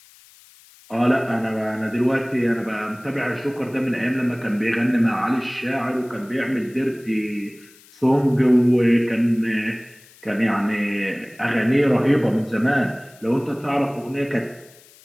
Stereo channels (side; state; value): left; noise; hiss, 26 dB below the sound